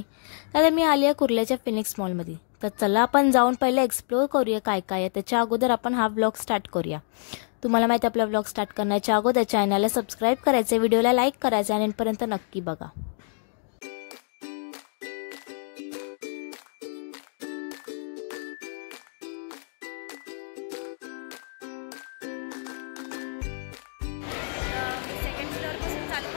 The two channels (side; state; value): right; silent; digital silence